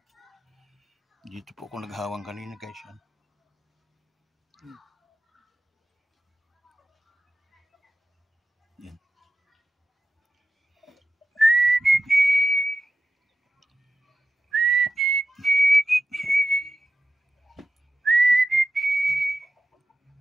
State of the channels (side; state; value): both; normal; correlation 0.90